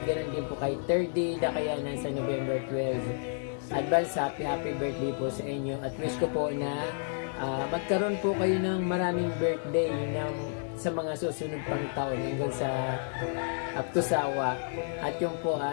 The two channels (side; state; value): right; silent; digital silence